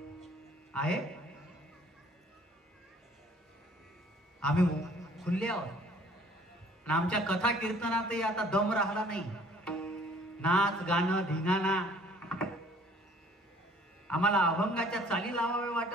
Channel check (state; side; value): normal; both; correlation 0.56